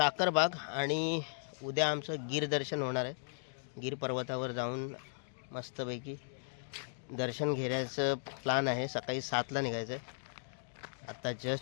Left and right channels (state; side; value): silent; right; digital silence